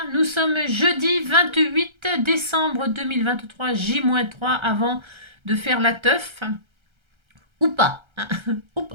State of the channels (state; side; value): late; left; 1.3 ms